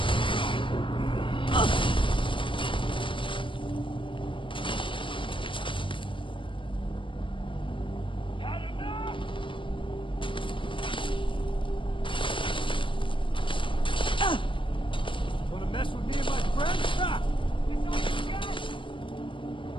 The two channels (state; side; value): late; right; 0.25 ms